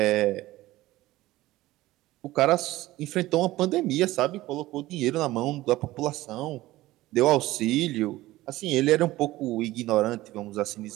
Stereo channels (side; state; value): left; quieter; 17.2 dB